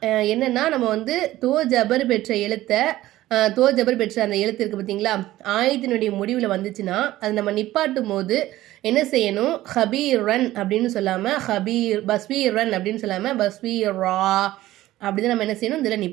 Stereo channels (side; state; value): left; quieter; 15.6 dB